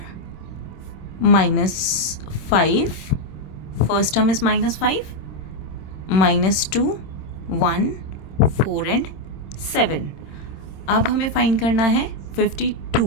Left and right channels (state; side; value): late; right; 26 ms